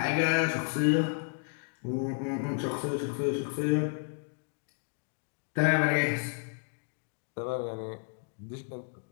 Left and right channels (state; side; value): silent; right; 56 dB below the other